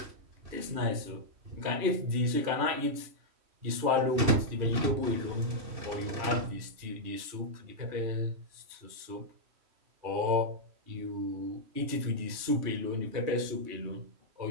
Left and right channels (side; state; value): left; late; 3.1 ms